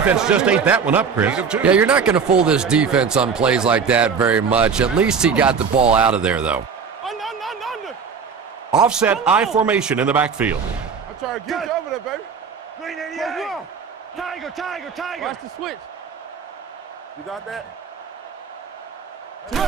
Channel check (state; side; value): quieter; left; 6.0 dB